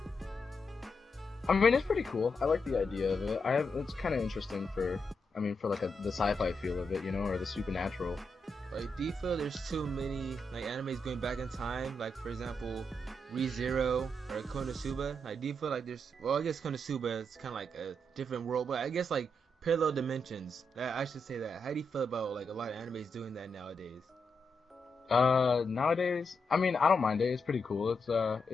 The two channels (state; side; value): normal; both; correlation 0.83